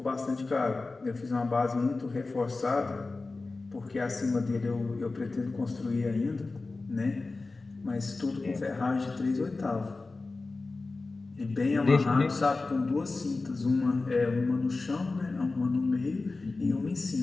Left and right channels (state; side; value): quieter; right; 3.6 dB